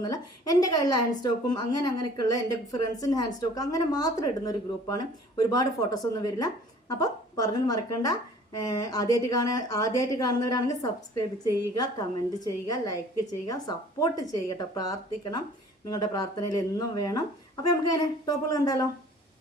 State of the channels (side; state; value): both; normal; correlation 0.51